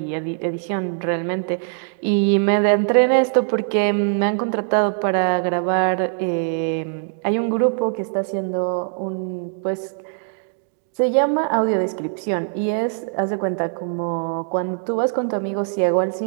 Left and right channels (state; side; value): silent; left; digital silence